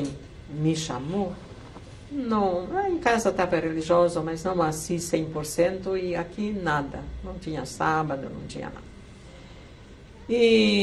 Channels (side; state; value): both; identical; correlation 1.00